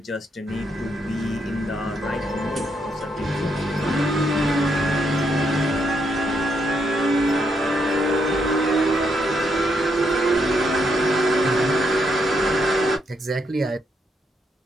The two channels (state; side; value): normal; both; correlation 0.77